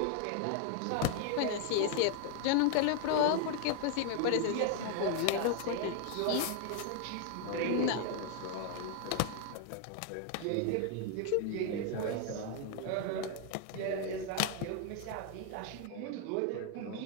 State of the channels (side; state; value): both; different; correlation 0.00